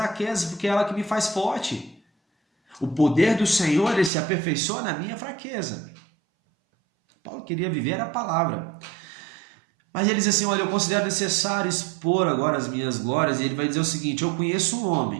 porque é ela que me faz forte. O poder do Senhor, ele se aperfeiçoa na minha fraqueza. Paulo queria viver a palavra. Mas ele diz assim, olha, eu considero necessário expor agora as minhas glórias, e ele vai dizer o seguinte, eu conheço um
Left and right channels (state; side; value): drops out; left; at 4.1 s